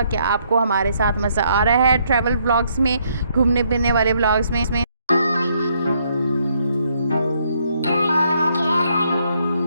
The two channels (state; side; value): inverted; both; correlation -0.71